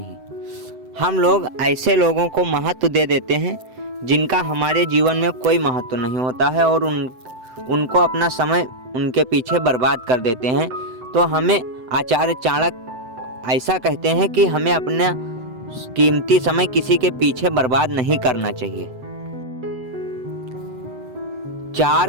हम लोग ऐसे लोगों को महत्व दे देते हैं जिनका हमारे जीवन में कोई महत्व नहीं होता है और उनको अपना समय उनके पीछे बर्बाद कर देते हैं। तो हमें आचार्य चाणक्य ऐसा कहते हैं कि हमें अपना कीमती समय किसी के पीछे बर्बाद नहीं करना चाहिए।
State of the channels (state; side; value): late; left; 7.8 ms